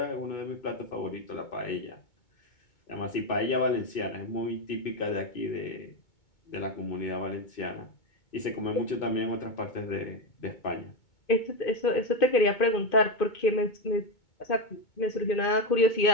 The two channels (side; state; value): right; late; 2.2 ms